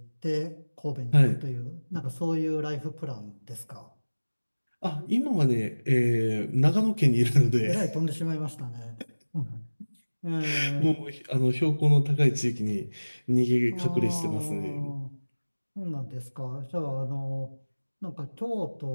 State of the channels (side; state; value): both; inverted; correlation -1.00